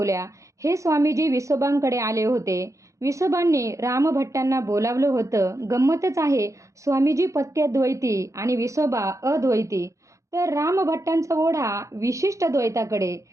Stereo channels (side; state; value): left; late; 0.15 ms